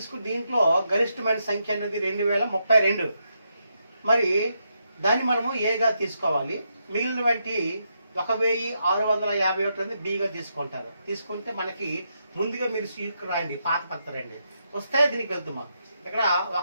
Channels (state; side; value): inverted; both; correlation -0.81